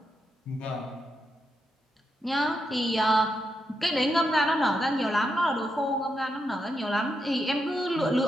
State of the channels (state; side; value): normal; both; correlation 0.83